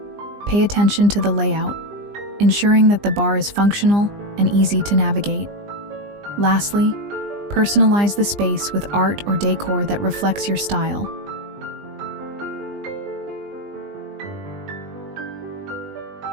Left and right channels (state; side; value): late; left; 20 ms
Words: Pay attention to the layout, ensuring that the bar is functional and easy to navigate. Lastly, personalize the space with art or decor that reflects your style.